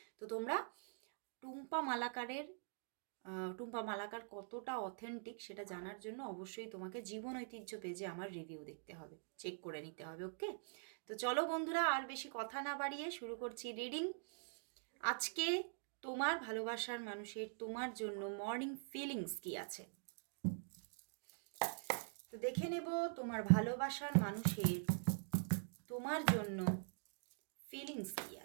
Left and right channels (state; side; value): silent; left; digital silence